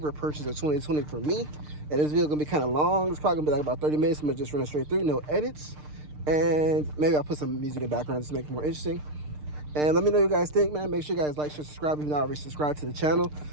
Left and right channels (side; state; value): left; late; 6.6 ms